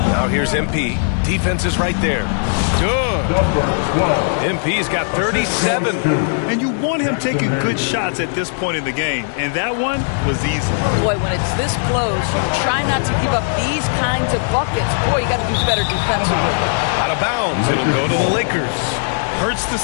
Now here's MP. Defense is right there. Good. MP's got 37. And you want him taking good shots at this point in the game. And that one was easy. Boy, when it's this close, you try not to give up these kinds of buckets. Boy, you got to do better defensively. Out of bounds. It'll go to the Lakers. Hurts to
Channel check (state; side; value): silent; right; digital silence